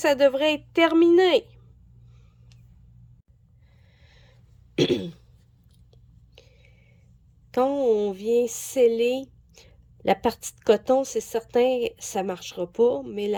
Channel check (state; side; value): identical; both; correlation 1.00